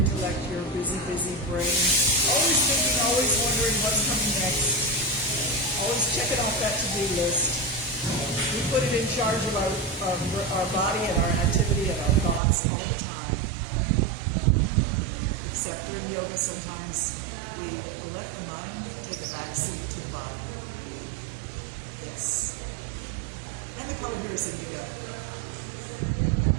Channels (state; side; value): drops out; left; at 12.4 s